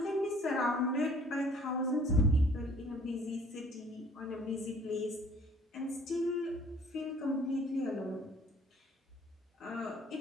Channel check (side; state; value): both; normal; correlation 0.56